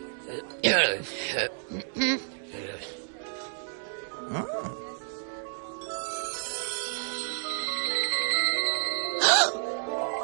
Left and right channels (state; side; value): silent; left; 58 dB below the other